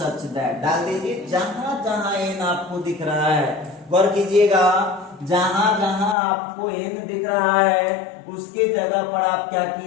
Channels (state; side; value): drops out; right; at 6.2 s